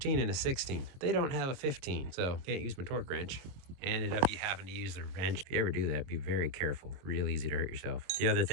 and a 16. They don't have a 15, so can't use my torque wrench. Ended up you having to use the wrench. If you ever do that, be very careful. Real easy to hurt yourself. The other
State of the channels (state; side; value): late; left; 22 ms